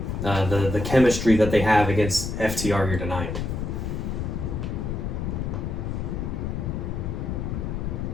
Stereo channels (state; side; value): noise; left; rumble, 3 dB below the sound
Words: the chemistry that they have against FTR here tonight?